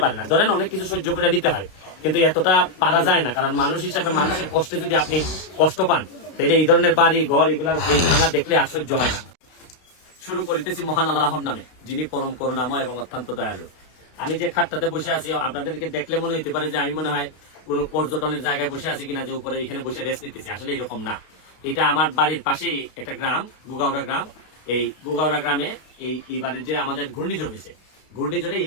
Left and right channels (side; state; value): right; late; 32 ms